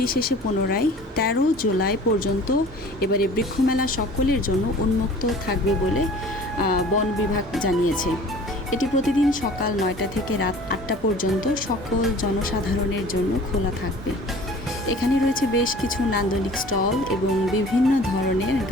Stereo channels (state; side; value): normal; both; correlation 0.46